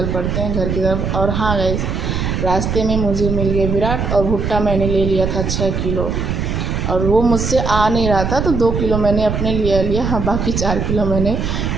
पड़ते हैं घर की तरफ। और हाँ गाइस, रास्ते में मुझे मिल गए विराट, और भुट्टा मैंने ले लिया था 6 किलो, और वो मुझसे आ नहीं रहा था, तो 2 किलो मैंने अपने लिए लिया। हाँ, बाकी 4 किलो मैंने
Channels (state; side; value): noise; right; rumble, 1 dB below the sound